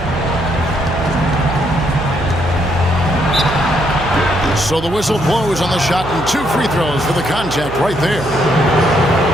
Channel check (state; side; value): noise; right; hum, 11 dB below the sound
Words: So the whistle blows on the shot and 2 free throws for the contact right there.